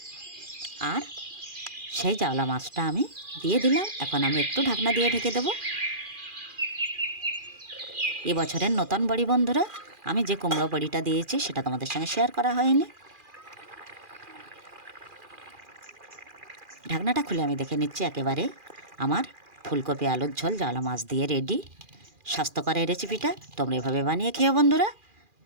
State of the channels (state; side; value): late; left; 2.4 ms